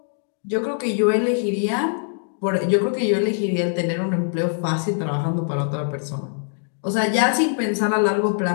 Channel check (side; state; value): right; silent; digital silence